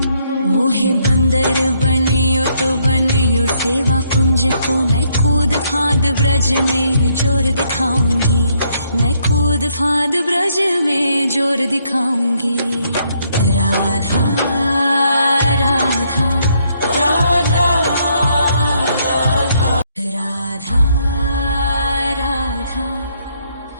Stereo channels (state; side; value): inverted; both; correlation -0.72